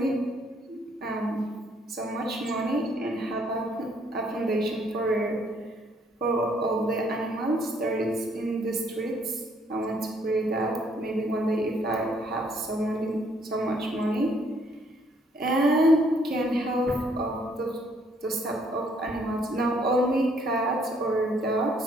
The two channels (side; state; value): both; normal; correlation 0.66